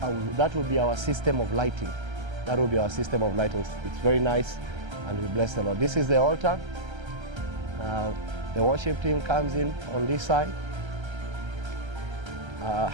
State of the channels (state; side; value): late; left; 1.3 ms